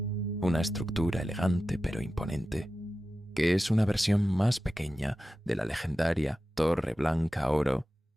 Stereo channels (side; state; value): both; normal; correlation 0.94